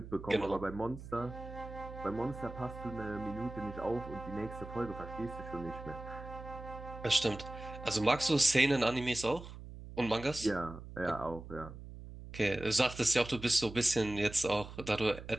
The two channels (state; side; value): noise; right; hum, 13 dB below the sound